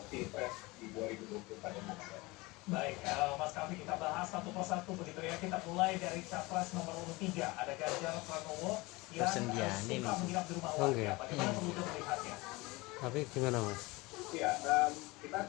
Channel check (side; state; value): right; quieter; 23.0 dB